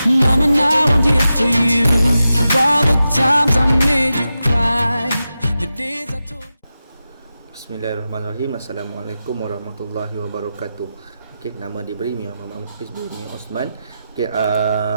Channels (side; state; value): both; inverted; correlation -0.91